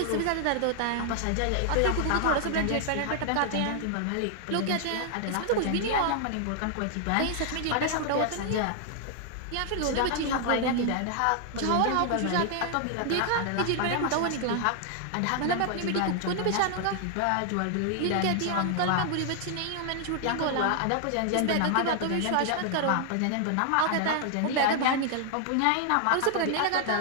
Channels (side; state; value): both; different; correlation 0.00